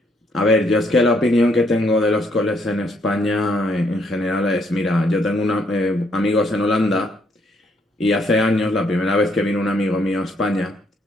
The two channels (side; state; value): both; normal; correlation 0.70